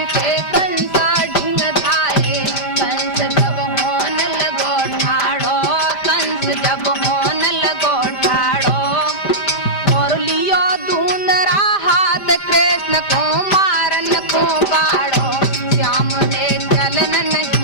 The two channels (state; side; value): late; right; 5.0 ms